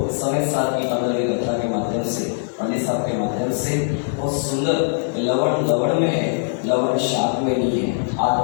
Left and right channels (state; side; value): silent; right; 64 dB below the other